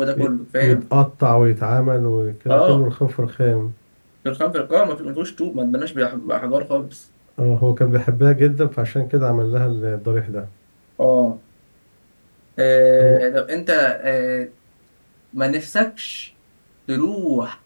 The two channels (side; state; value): both; inverted; correlation -1.00